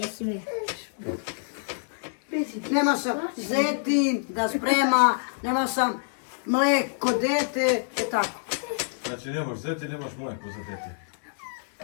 mi. Nema sam zetin da sprema, nema sam mleko dete, tako. Znači nemaš zeti, nemaš mleko za dete.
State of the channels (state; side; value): silent; right; digital silence